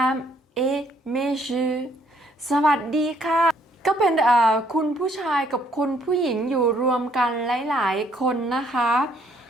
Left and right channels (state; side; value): normal; both; correlation 0.66